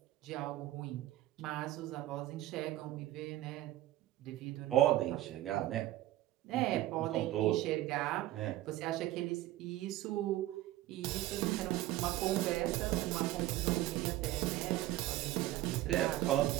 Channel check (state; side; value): quieter; left; 15.3 dB